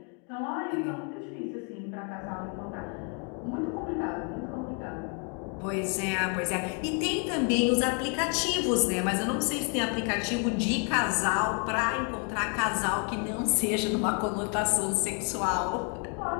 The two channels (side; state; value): right; quieter; 38.8 dB